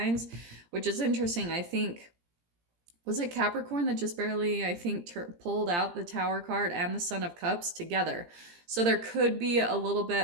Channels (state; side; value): late; left; 17 ms